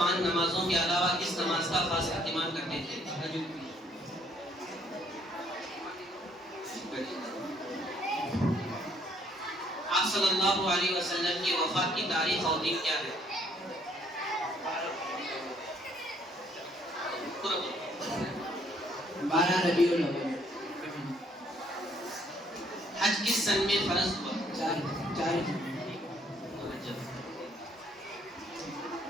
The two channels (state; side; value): normal; both; correlation 0.65